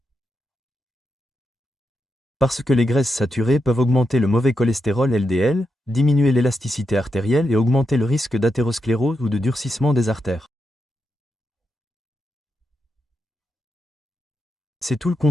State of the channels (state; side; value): normal; both; correlation 0.85